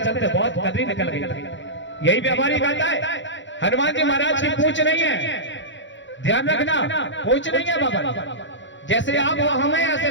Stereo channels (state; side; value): late; right; 0.54 ms